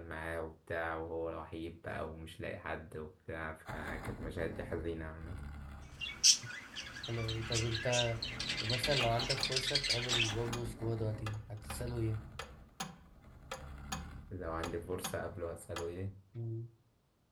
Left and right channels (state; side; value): identical; both; correlation 1.00